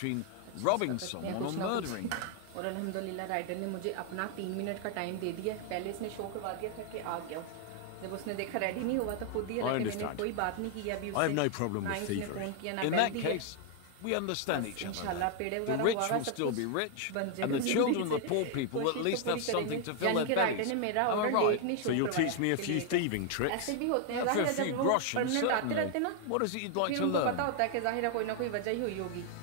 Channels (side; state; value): both; different; correlation 0.00